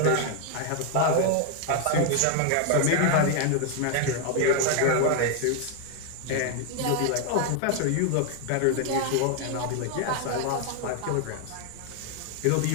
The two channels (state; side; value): different; both; correlation 0.00